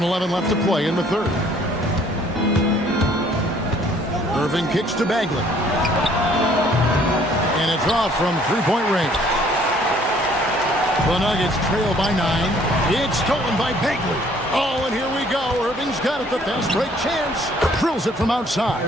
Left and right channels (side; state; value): both; normal; correlation 0.60